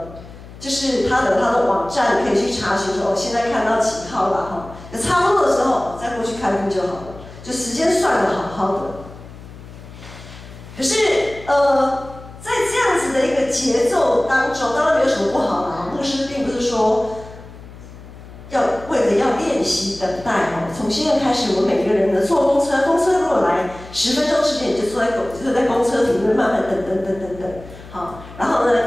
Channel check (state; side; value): noise; left; hum, 17 dB below the sound